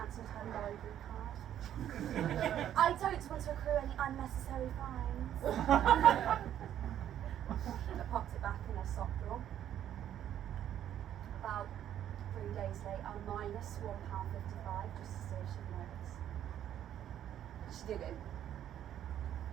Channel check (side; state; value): left; quieter; 10.8 dB